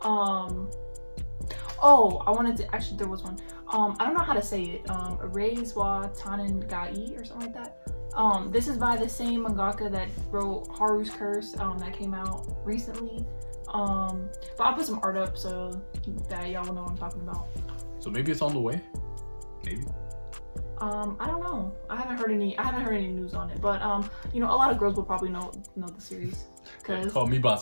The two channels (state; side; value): inverted; both; correlation -1.00